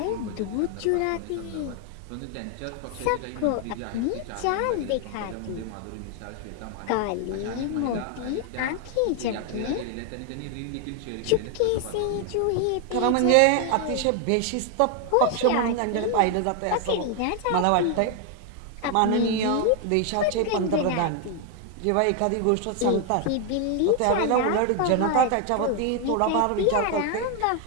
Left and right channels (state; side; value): different; both; correlation 0.00